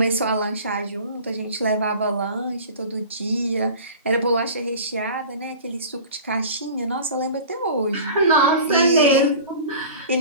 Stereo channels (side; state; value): both; inverted; correlation -0.40